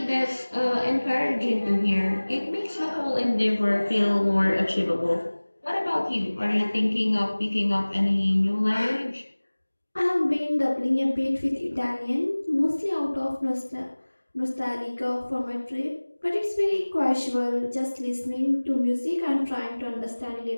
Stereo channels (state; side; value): inverted; both; correlation -1.00